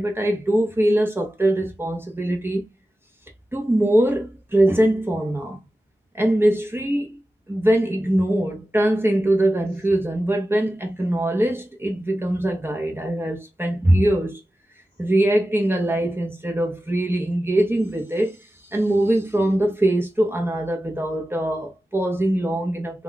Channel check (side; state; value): both; normal; correlation 0.93